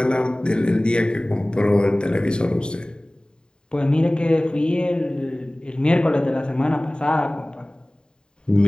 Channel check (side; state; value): right; late; 0.048 ms